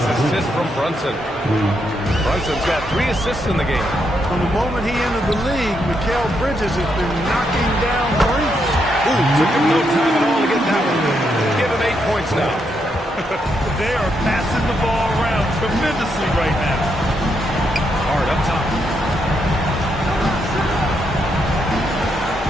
from Brunson. Brunson's got 3 assists in the game. From the moment he entered the league, Mikal Bridges has been knocking down threes. Ooh, took him no time at all to get that one. Give him 8 points now. They are passing the ball around tremendously right now. Hard up top.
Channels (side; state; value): both; normal; correlation 0.79